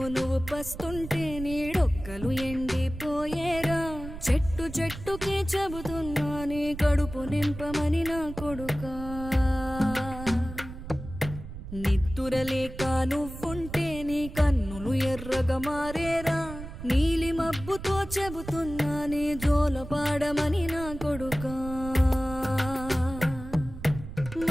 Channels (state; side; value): noise; right; rumble, 11 dB below the sound